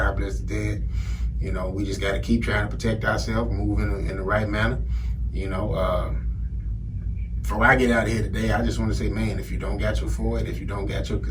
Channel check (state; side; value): identical; both; correlation 1.00